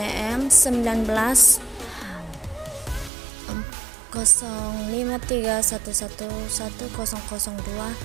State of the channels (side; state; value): left; drops out; at 3.1 s